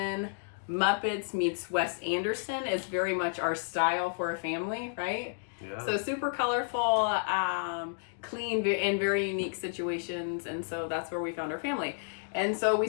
Muppets meets Wes Anderson is very much our style for a family, right? Yeah. So super colorful, clean, in very unique situations. And so that's where we found our family. And so we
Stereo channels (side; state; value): right; silent; digital silence